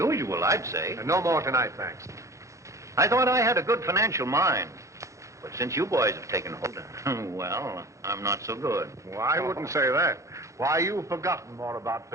I'd say. No more tonight, thanks. I thought I had a good financial mind. But since you boys have taken hold, well, I'm not so good. Well, I wouldn't say that. Why, you've forgotten more about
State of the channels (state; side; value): late; left; 0.15 ms